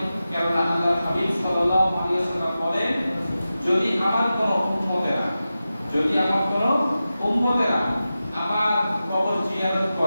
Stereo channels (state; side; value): inverted; both; correlation -0.93